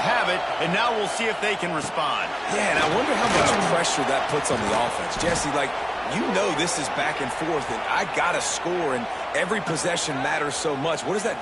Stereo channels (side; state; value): both; identical; correlation 1.00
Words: it, and now we'll see if they can respond. Yeah, and I wonder how much pressure that puts on the offense. Jesse, you know this is back and forth, and I got to score, and every possession matters so much. What does that